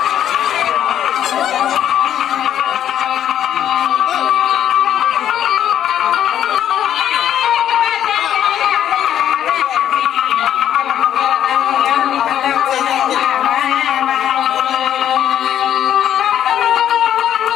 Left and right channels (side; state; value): right; quieter; 10.5 dB